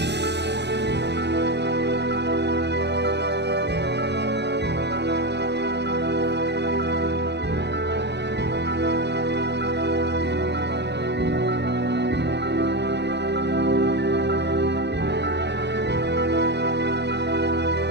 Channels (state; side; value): late; left; 0.50 ms